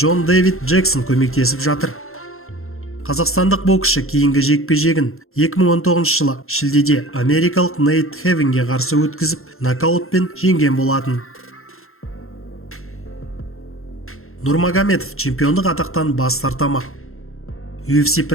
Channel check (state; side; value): late; right; 0.62 ms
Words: Дэвид Джексон көмектесіп жатыр. Қазақстандық боксшы кейінгі жекпе-жегін 2019 жылы шілдеде америкалық Нейт Хевинге қарсы өткізіп, нокаутпен жеңген болатын. Нурмагомедов чемпиондық атақтан бас тартамақ. UFC